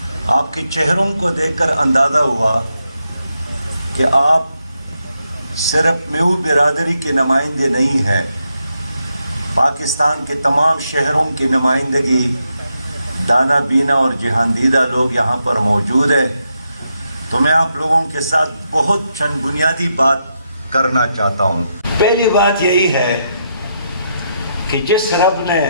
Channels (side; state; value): both; inverted; correlation -0.82